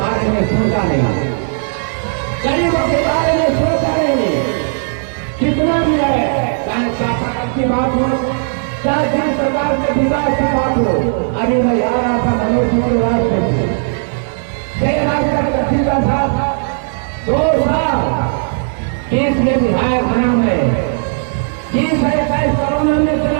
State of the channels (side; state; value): left; silent; digital silence